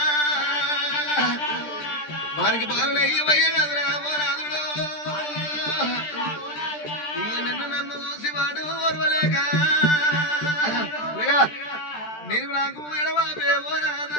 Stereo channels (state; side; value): late; right; 13 ms